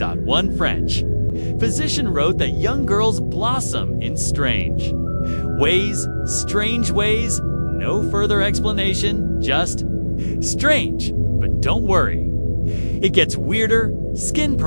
One French physician wrote that young girls blossom in strange ways. No further explanation, just strange. But don't worry, it gets weirder. Skin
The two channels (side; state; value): both; inverted; correlation -1.00